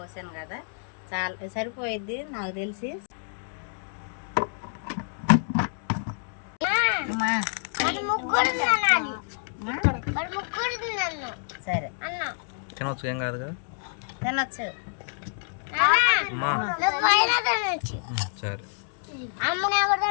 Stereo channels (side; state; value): right; silent; digital silence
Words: కదా, చాలా సరిపోయిద్ది నాకు తెలిసి. సరే తినొచ్చు, ఏం కాదు కదా, తినొచ్చు. సరే అమ్మ